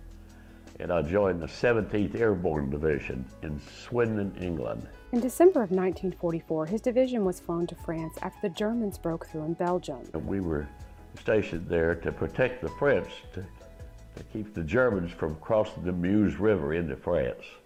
and I joined the 17th Airborne Division in Swindon, England. In December of 1944, his division was flown to France after the Germans broke through in Belgium. We were stationed there to protect the French, to keep the Germans from crossing the Meuse River into France.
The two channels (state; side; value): identical; both; correlation 1.00